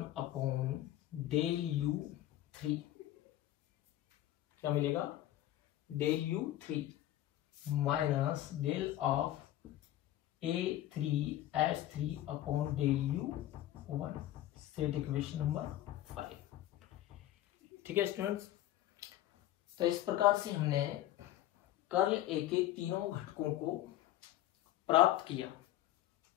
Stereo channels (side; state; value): right; quieter; 13.8 dB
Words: upon del U3, क्या मिलेगा, del U3 minus del of A3H3 upon del U1, set equation number 5। ठीक है स्टूडेंट्स, तो इस प्रकार से हमने कर्ल A के तीनों घटकों को प्राप्त किया।